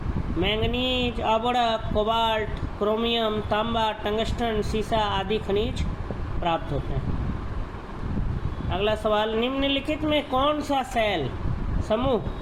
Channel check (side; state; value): both; identical; correlation 1.00